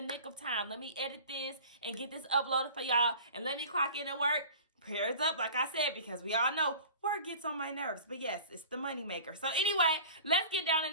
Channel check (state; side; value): inverted; both; correlation -0.41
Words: nick of time. Let me edit this and get this uploaded for y'all. And let me clock in at work. Prayers up, like I said, because we all know work gets on my nerves. But yes, it's the money maker. So anyway, let's get down in